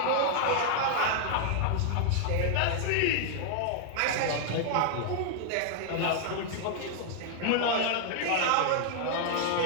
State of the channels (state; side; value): different; both; correlation 0.00